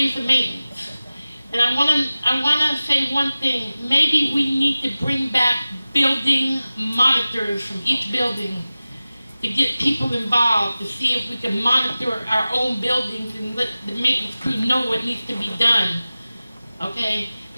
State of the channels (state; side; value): inverted; both; correlation -0.96